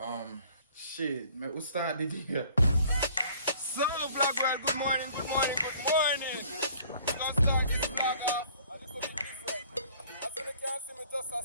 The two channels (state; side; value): inverted; both; correlation -0.55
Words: Shit, man, we started here. So, Black World, good morning. We're gonna start this vlog off a little bit different. As you can see, me just a